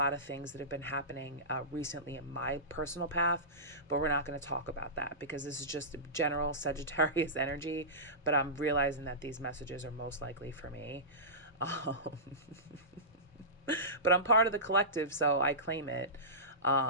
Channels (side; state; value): both; normal; correlation -0.19